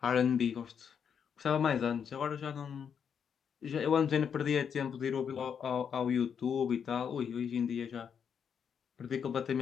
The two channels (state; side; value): quieter; right; 7.4 dB